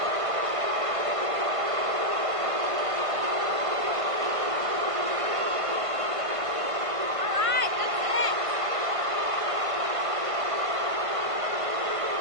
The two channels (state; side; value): late; left; 1.5 ms